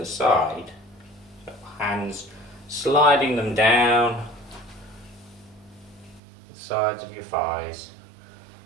side. So hands sliding them down the sides of your thighs.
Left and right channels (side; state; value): left; drops out; at 6.2 s